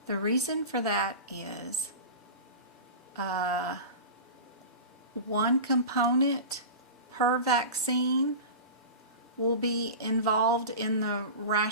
The reason for that is one component per vaccine will be involved in the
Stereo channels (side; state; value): both; inverted; correlation -0.31